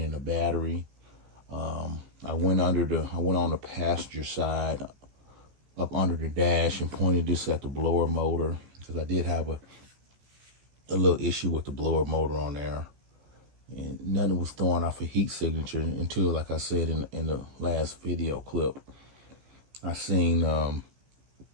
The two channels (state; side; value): late; left; 15 ms